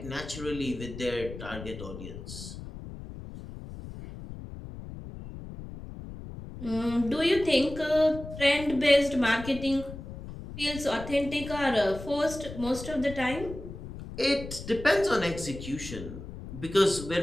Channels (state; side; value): noise; left; rumble, 11 dB below the sound